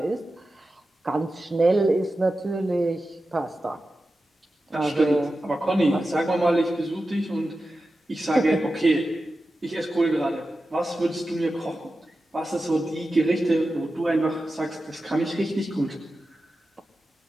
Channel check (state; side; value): normal; both; correlation 0.92